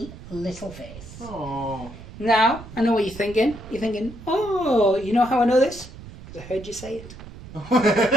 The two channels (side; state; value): right; noise; rumble, 15 dB below the sound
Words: little face. Oh. Now, I know what you're thinking. You're thinking, oh, you know how I know this? Because I heard you say it.